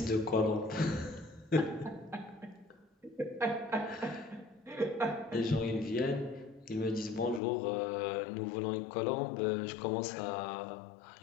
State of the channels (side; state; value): right; drops out; at 7.4 s